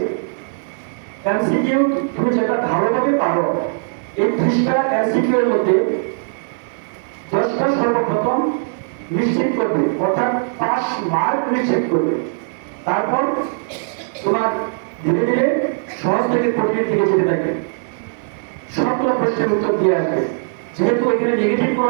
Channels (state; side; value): silent; left; 57 dB below the other